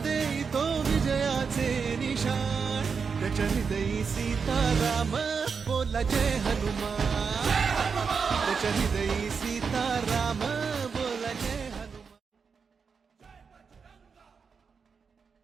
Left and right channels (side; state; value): left; quieter; 5.7 dB